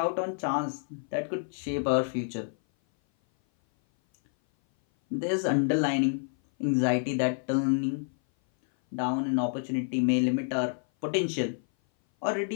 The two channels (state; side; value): silent; right; 57 dB below the other